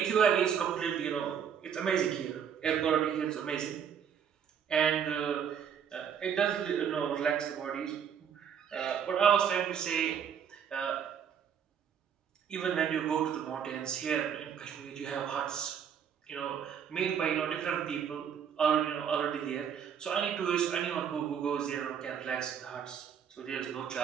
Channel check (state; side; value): quieter; left; 7.9 dB